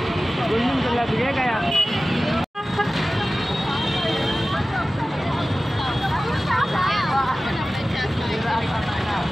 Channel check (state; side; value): normal; both; correlation 0.96